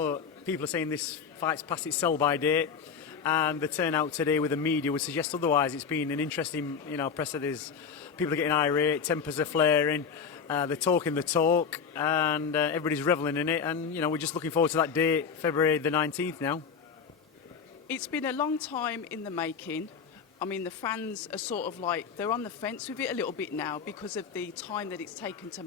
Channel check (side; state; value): right; quieter; 6.4 dB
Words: people are saying this fight's past its sell-by date, and the turnout today with the media would suggest otherwise. It's been an interesting, presser. There's people are getting irate, tempers are flaring, they're talking the talk, and everybody's revelling in it. And we're just looking forward to that date, February the 19th now. It's been a long time in the making. I mean, the fans are sort of like, they're on the fence with it a little bit now because of the time that it's taken to